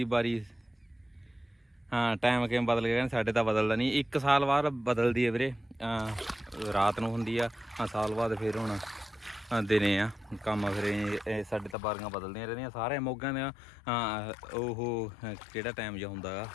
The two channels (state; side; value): drops out; right; at 11.8 s